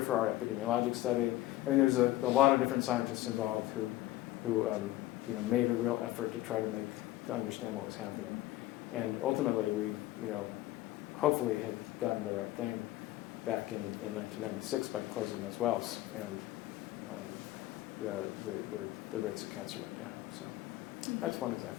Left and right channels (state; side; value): quieter; right; 15.9 dB